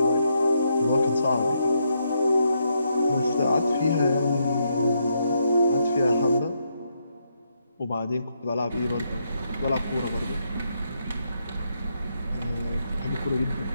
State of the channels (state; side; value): inverted; both; correlation -0.78